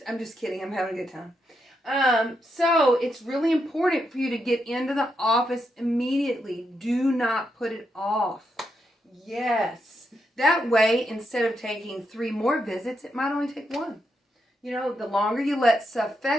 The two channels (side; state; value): both; normal; correlation 0.82